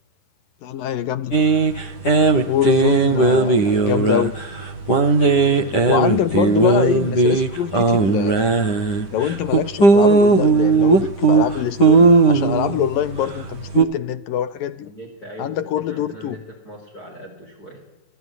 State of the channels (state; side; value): late; right; 10 ms